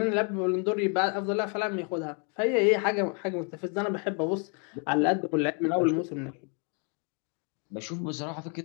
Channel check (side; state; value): right; quieter; 39.5 dB